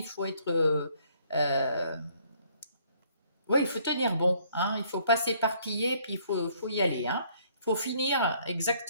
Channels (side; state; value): both; inverted; correlation -0.64